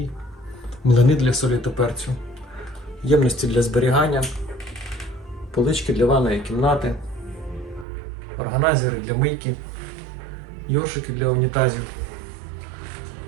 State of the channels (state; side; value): drops out; left; at 7.9 s